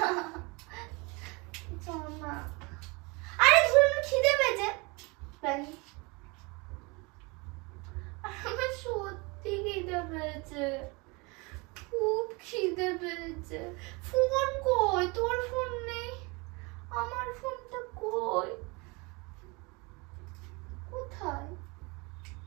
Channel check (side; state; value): left; quieter; 27.6 dB